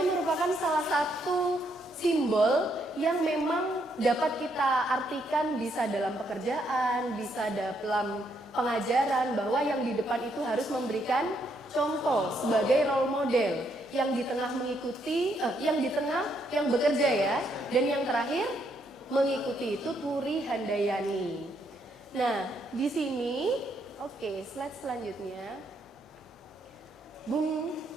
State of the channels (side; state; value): both; normal; correlation 0.74